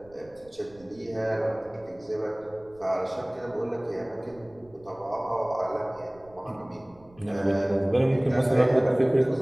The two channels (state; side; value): noise; right; rumble, 27 dB below the sound